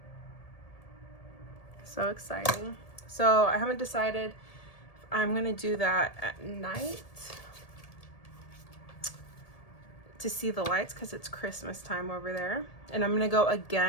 So exciting. So I haven't decided if I'm gonna do that at night to see the lights, because it's Christmas time over there. And I'm gonna go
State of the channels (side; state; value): right; late; 1.7 ms